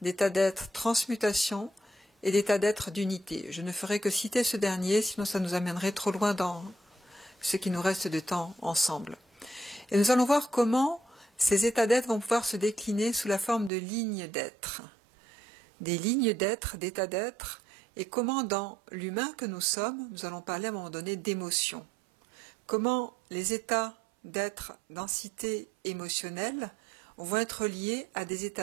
d'état d'être transmutation et d'état d'être d'unité. Je ne ferai que citer ce dernier, sinon ça nous amènerait trop loin dans ce qui nous reste de temps ensemble. Et nous allons voir comment ces états d'être vont pouvoir se décliner sous la forme de lignes d'être. Des lignes d'être, d'états d'être, et comment dans l'humain que nous sommes, nous allons parler à un moment donné d'émotions. Comment les états d'être densité émotionnelle vont être liés à des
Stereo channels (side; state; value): left; drops out; at 13.7 s